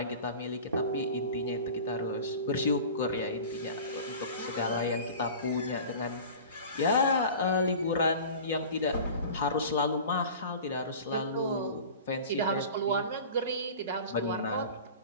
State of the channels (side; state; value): both; inverted; correlation -0.38